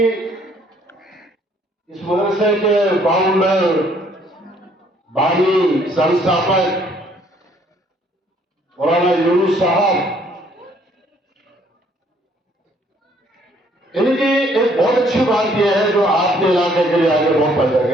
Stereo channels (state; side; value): normal; both; correlation 0.63